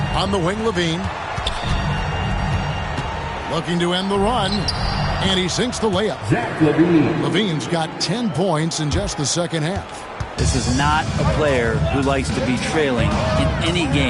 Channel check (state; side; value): identical; both; correlation 1.00